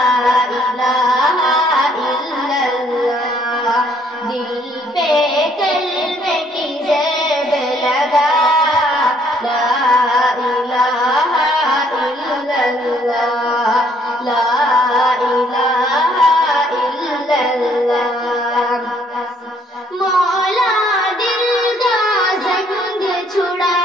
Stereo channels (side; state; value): both; normal; correlation 0.65